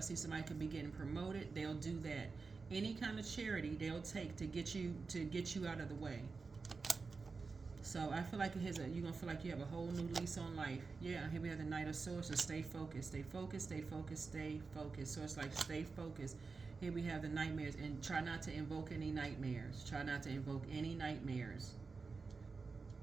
somebody could be getting promoted, they'll do that. Any kind of charity they'll take to get you out of the way. So I feel like you're gonna feel like you have a whole new lease on life. Yeah, here we have the Knight of Swords. So stay focused, stay focused, stay focused, stay focused. So it's like stay focused. Here we have the nightmares, and try not to invoke any nightmares. Try not to invoke any nightmares.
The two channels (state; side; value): quieter; left; 4.4 dB